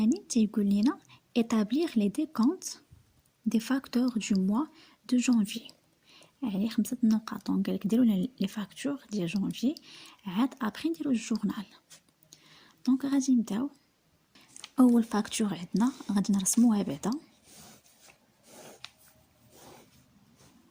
تيقول لنا établir les décomptes des facteurs du mois de janvier، يعني 5 نقاط. دونك قالك ديروا لنا لي فاكتور ديال جانفي، عاد ابري نديرو الجورنال. دونك غادي نبداو. اول فاكتور عندنا غادي نرسموها بعدا،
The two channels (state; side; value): identical; both; correlation 1.00